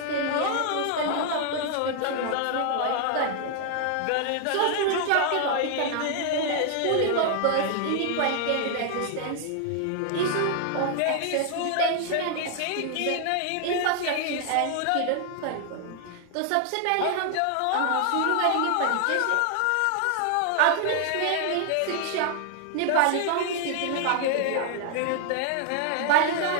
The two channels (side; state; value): both; different; correlation 0.00